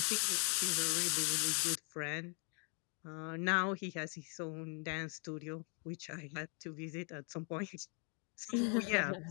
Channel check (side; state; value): right; quieter; 37.3 dB